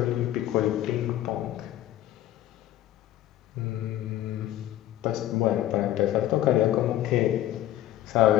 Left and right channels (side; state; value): right; quieter; 13.4 dB